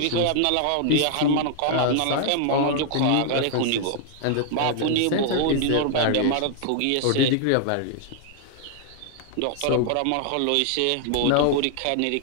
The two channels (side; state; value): both; different; correlation 0.00